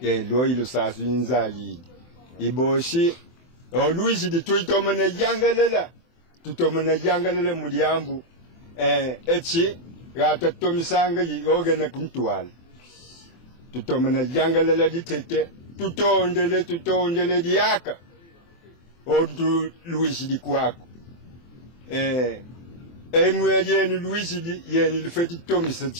lo ilo sasu nzayidi iboshi oluishi tuitomana yangalela muliambu echi gata tomisanga yogena kuntwala tutomana yangalela ditete tutondele diaka odu luishi dikwako enwe yenu luishi di yenu lufeti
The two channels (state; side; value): late; right; 24 ms